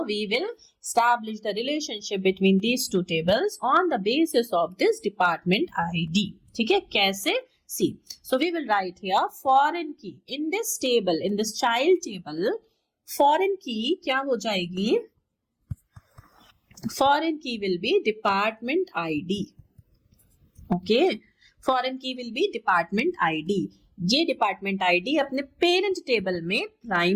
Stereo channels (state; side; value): identical; both; correlation 1.00